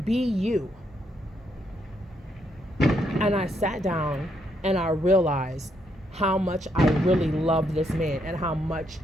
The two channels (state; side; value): normal; both; correlation 0.76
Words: Be you. And I sat down and I realized how much I really love this man, and how much,